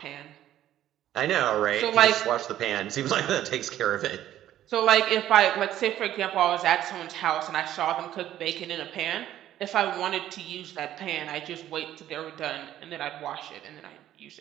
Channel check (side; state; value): left; quieter; 12.4 dB